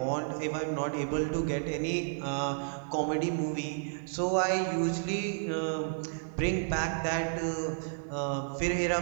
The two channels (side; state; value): left; silent; digital silence